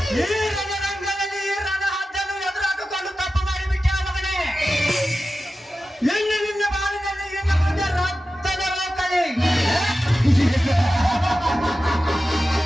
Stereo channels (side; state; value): both; normal; correlation 0.93